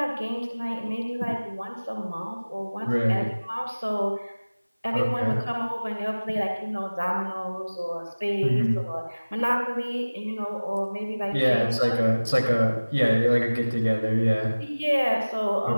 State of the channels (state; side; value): inverted; both; correlation -1.00